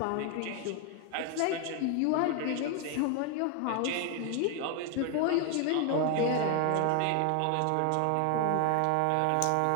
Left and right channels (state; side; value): different; both; correlation 0.00